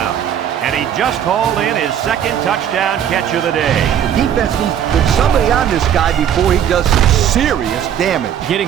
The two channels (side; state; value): left; quieter; 9.4 dB